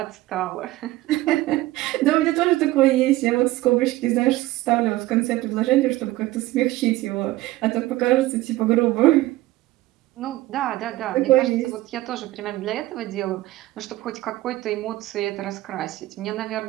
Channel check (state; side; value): quieter; left; 17.2 dB